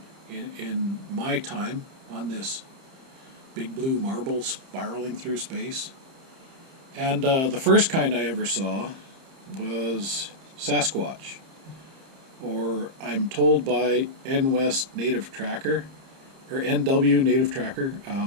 in my time on this big blue marble spiraling through space. And the first kind I ever saw was Sasquatch, or I'm told by N-West Native Tracker, or NW Native Tracker,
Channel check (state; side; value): late; left; 30 ms